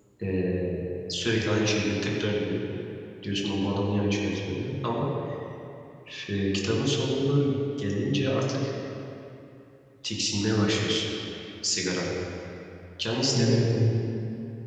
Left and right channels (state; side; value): identical; both; correlation 1.00